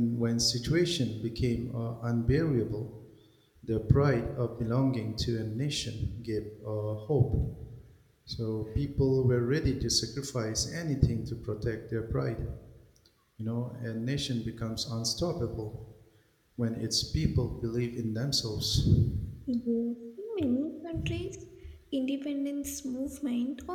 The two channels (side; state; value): both; identical; correlation 1.00